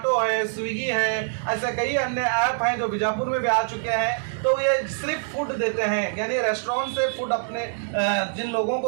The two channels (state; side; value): silent; left; digital silence